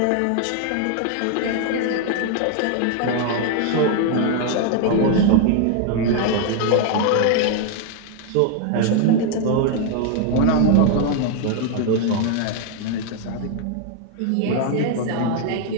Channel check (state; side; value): different; both; correlation 0.00